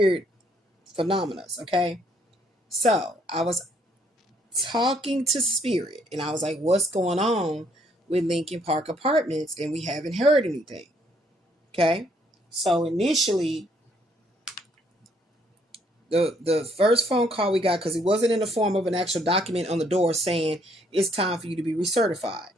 phenomena, okay? So, I was talking to Spirit and I was like, what's going on with Lincoln Park Apartments? And we haven't heard anything. Okay. So initially, the first phone call we got, because it wasn't in the form of an actual document on the door saying it's time for you to be recertified.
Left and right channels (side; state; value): both; normal; correlation 0.68